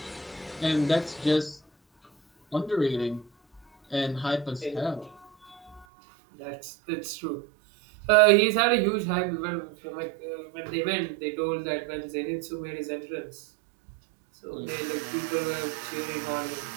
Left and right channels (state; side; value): drops out; left; at 5.9 s